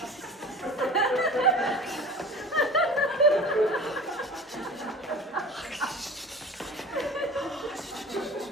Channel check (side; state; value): both; normal; correlation 0.39